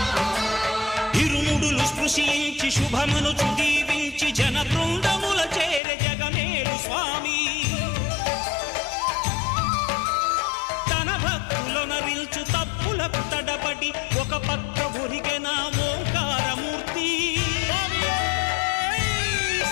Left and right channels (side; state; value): right; drops out; at 5.8 s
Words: ఇరుముడులు స్పృశించి శుభమనుచు దీవించి జన బృందముల చేరే జగమేలు స్వామి తన భక్తులొనరిల్చు తప్పులకు తడబడి ఒక పక్క ఒరిగెన ఓంకారమూర్తి